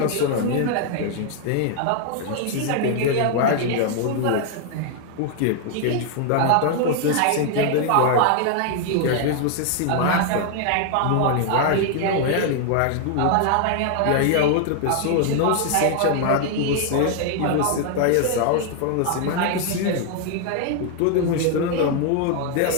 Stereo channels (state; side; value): different; both; correlation 0.00